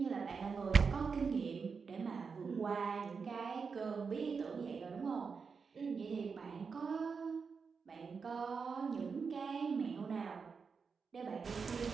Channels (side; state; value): left; quieter; 5.4 dB